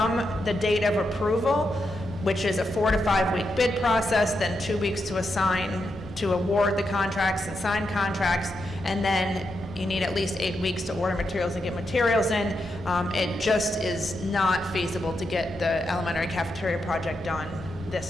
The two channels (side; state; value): both; normal; correlation 0.84